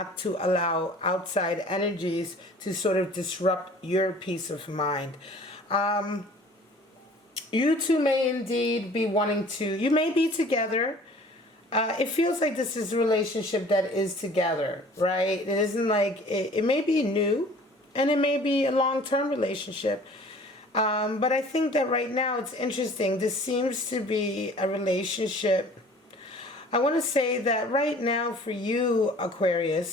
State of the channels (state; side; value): normal; both; correlation 0.49